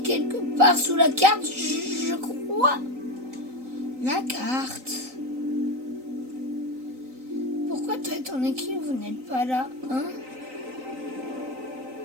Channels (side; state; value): left; late; 3.9 ms